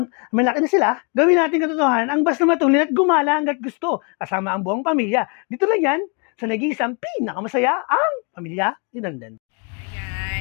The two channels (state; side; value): quieter; right; 35.1 dB